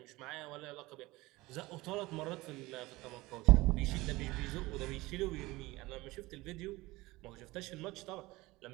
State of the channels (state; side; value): quieter; left; 20.5 dB